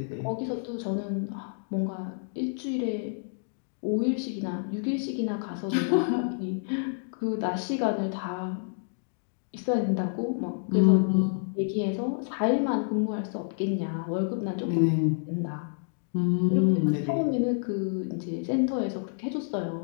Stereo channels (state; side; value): silent; right; digital silence